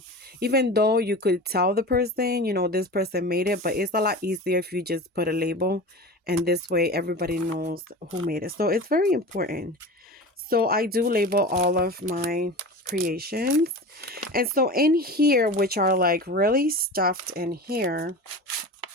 even though you could tell the person, this person made it, but it's a lot easier if you just put a label and this way everybody knows who made it. So it's very important. So I do label all of my creations. And so in here, which are like really stuffed in here,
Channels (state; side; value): normal; both; correlation 0.32